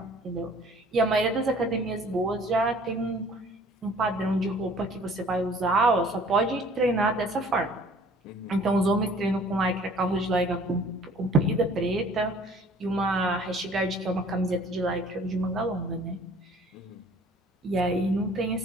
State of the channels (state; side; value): normal; both; correlation 0.53